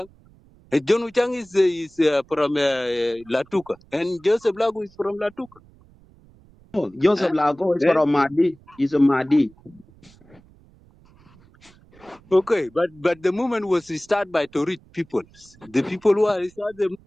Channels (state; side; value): noise; right; rumble, 27 dB below the sound